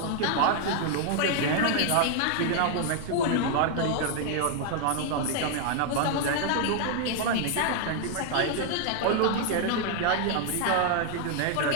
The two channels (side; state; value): both; different; correlation 0.00